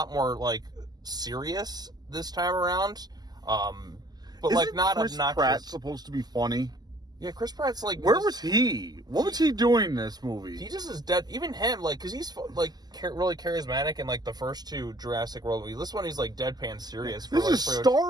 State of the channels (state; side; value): late; left; 0.20 ms